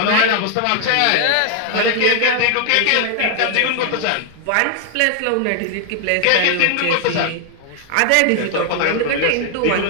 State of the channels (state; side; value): different; both; correlation 0.00